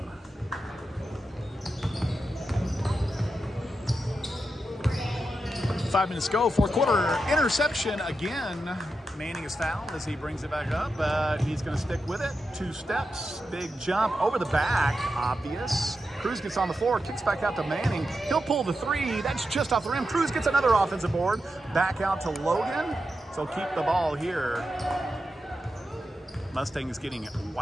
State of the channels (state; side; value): normal; both; correlation 0.88